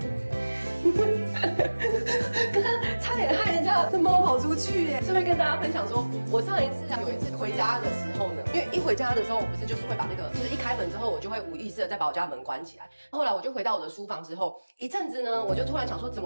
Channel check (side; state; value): both; inverted; correlation -1.00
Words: 刚刚差点害人家的猫跑出去耶！顺便跟大家分享说，我上一次有一次回家的时候呢，因为一回家的时候，我不是就是会把那个，就是一开门之后，我就会无意识的再把我家门关起来。后来我就回到我的书房之后，一阵子呢，我就突然想说，怎